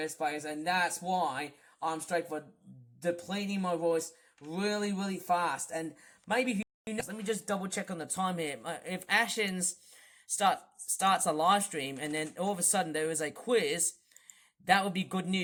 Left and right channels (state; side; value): identical; both; correlation 1.00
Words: place. And that's why I'm straightforward depleting my voice really, really fast. And maybe, let me just double check on the time here. If Ashens starts a live stream and then all of a sudden there is a quiz, that would be good